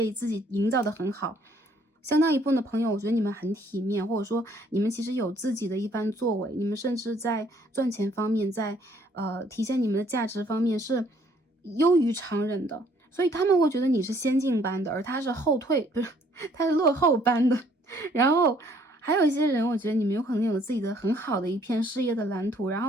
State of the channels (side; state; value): both; normal; correlation 0.63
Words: 自己营造得很好。相当一部分的朋友，我觉得你们很体面，或者说你们其实有自己的一番作为，你们甚至在赚钱方面，在体现你们的价值方面是优于常人的，所以他们会觉得你是先进班的，而他是后退，不是，他是落后班的。然后还有一些人，我觉得你们有可能有自己的很好的一片事业的蓝图，然